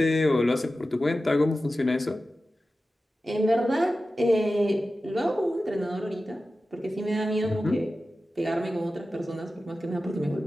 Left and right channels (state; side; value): normal; both; correlation 0.94